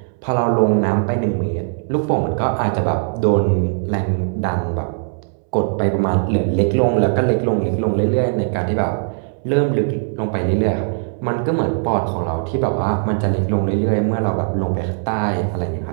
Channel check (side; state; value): left; silent; 66 dB below the other